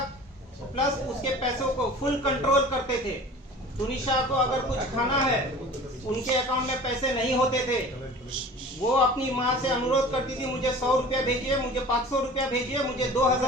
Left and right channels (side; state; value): both; normal; correlation 0.41